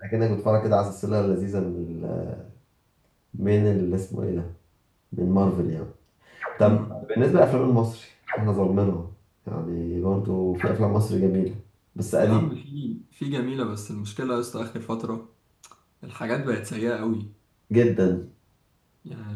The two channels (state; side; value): identical; both; correlation 1.00